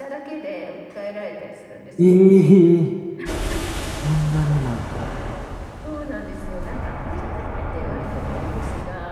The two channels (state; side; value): identical; both; correlation 1.00